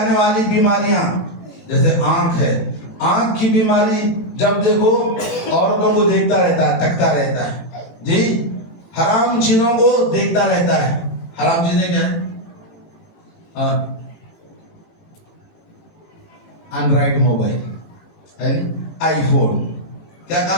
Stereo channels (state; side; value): late; right; 18 ms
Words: والی بیماریاں, جیسے آنکھ ہے, آنکھ کی بیماری جب دیکھو عورتوں کو دیکھتا رہتا ہے, تکتا رہتا ہے, جی حرام چیزوں کو دیکھتا رہتا ہے. حرام چیزیں کیا ہیں؟ اینڈرائڈ موبائل, آئی فون, کیا